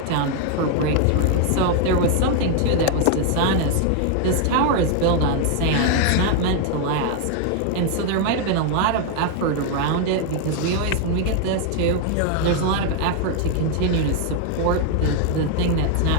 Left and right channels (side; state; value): both; different; correlation 0.00